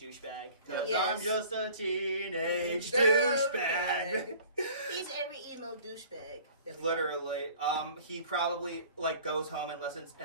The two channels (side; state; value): both; inverted; correlation -0.48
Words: 'Cause Yes. I'm just a teenage Douchebag. douchebag. He's every emo douchebag. that we Literally. He probably, like, goes home and listens